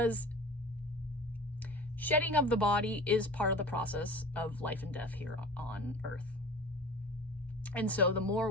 shedding of the body is part of the process of life and death here on Earth. And so the more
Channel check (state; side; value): normal; both; correlation 0.38